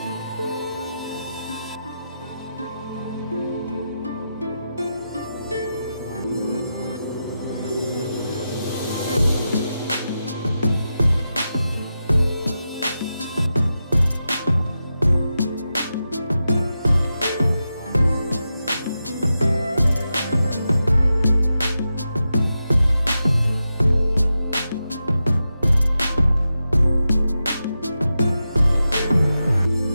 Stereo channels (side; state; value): both; inverted; correlation -0.90